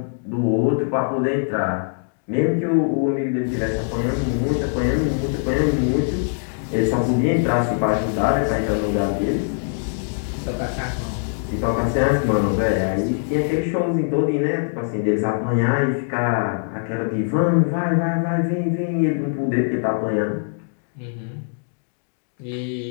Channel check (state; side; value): silent; right; digital silence